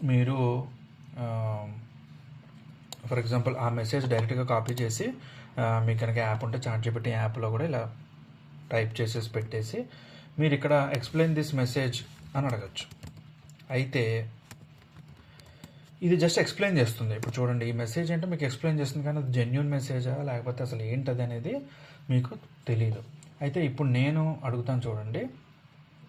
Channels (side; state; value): both; identical; correlation 1.00